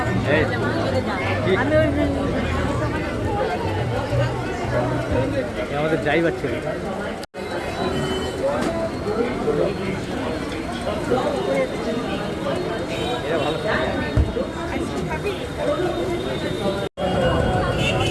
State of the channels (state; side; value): identical; both; correlation 1.00